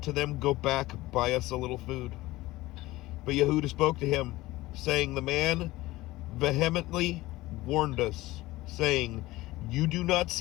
to them, Go back, buy us a little food. But Yehudah spoke to him, saying, The man vehemently warned us, saying, You do not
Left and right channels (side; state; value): right; quieter; 18.4 dB